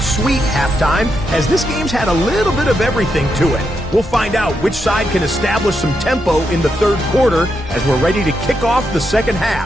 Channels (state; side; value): normal; both; correlation 0.83